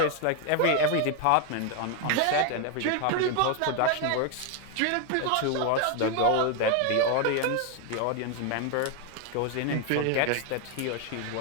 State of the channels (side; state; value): both; different; correlation 0.01